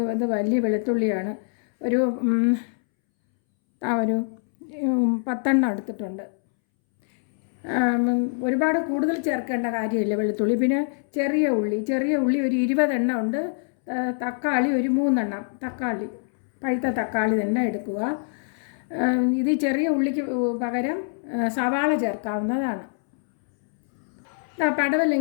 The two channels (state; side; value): silent; right; 62 dB below the other